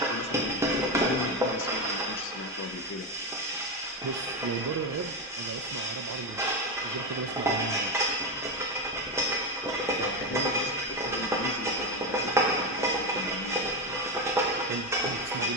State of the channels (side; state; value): both; normal; correlation 0.13